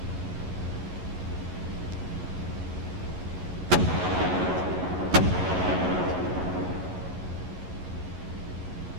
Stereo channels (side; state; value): left; late; 11 ms